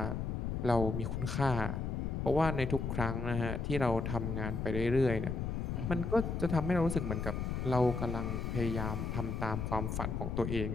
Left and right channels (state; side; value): noise; left; rumble, 2 dB below the sound